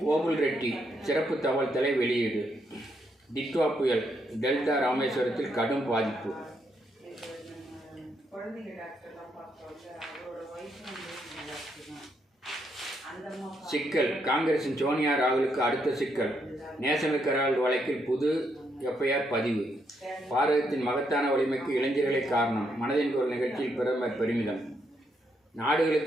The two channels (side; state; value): both; normal; correlation 0.77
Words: ஓபுல் ரெட்டி சிறப்பு தகவல் தலை வெளியீடு. டிட்வா புயல் டெல்டா ராமேஸ்வரத்தில் கடும் பாதிப்பு. சிக்கல். காங்கிரசின் சோனியா ராகுலுக்கு அடுத்த சிக்கல். நேஷனல் ஹெரால்டு வழக்கில் புது FIR பதிவு. பாரதத்தின் மகத்தான வலிமைக்கு இளைஞர்களே காரணம். மனதின் குரல் நிகழ்ச்சியில் பிரதமர் பெருமிதம்.